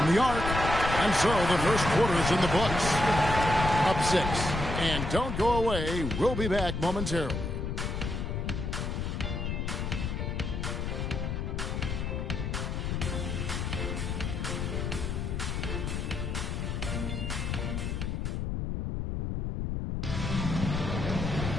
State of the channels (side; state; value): left; noise; rumble, 2 dB below the sound